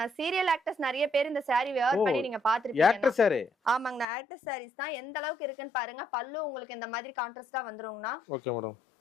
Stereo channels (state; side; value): drops out; right; at 4.0 s